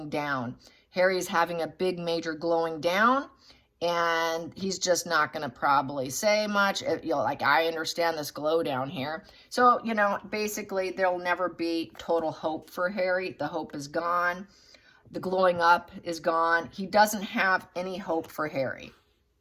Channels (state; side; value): identical; both; correlation 1.00